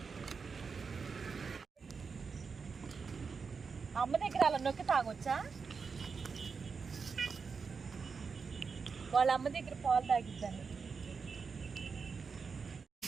అమ్మ దగ్గర అలా నొక్కి తాగొచ్చా? వాళ్ళ అమ్మ దగ్గర పాలు తాగిద్దాన్ని.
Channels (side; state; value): left; quieter; 5.3 dB